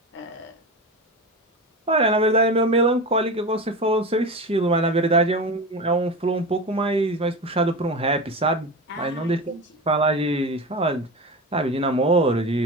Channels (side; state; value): both; normal; correlation 0.25